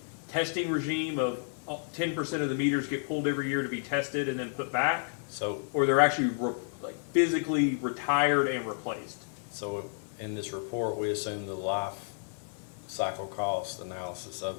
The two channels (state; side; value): silent; right; 57 dB below the other